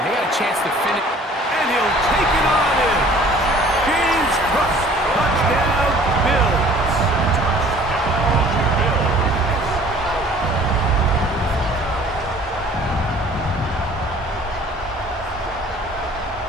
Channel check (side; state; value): both; normal; correlation 0.51